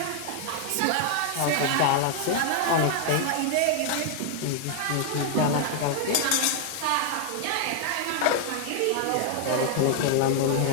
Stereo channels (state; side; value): different; both; correlation 0.00